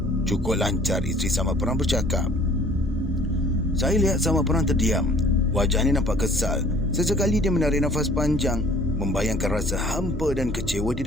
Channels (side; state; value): both; normal; correlation 0.54